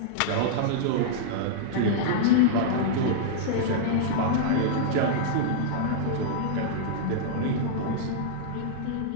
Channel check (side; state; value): both; different; correlation -0.02